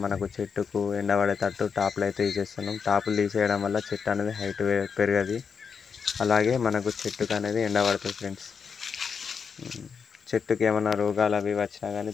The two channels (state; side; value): quieter; right; 6.1 dB